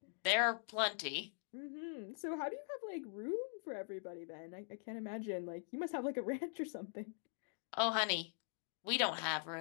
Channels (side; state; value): right; silent; digital silence